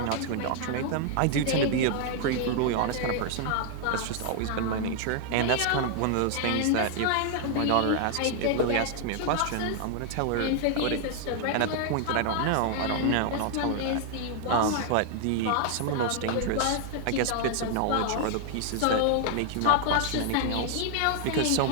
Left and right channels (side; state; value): both; different; correlation 0.00